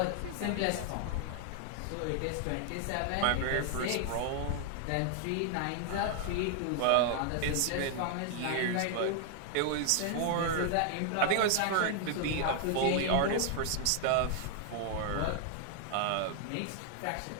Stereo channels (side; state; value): both; different; correlation 0.00